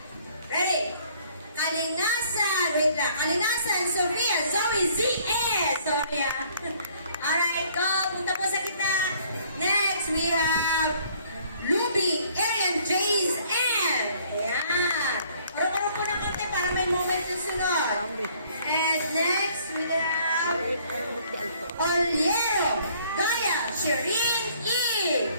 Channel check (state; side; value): inverted; both; correlation -0.60